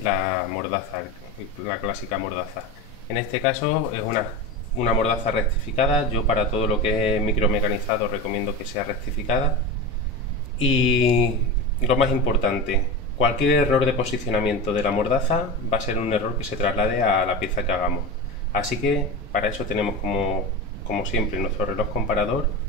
la mordaza, la clásica mordaza. En este caso es una mordaza rectificada. Yo para todo lo que es micromecanizado recomiendo que sea rectificada. Y lo más importante, cualquier error de posicionamiento de la mordaza va a ser un error que se traslade a la pieza que hagamos. Así que para eso tenemos como siempre nuestro reloj comparador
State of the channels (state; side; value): normal; both; correlation 0.24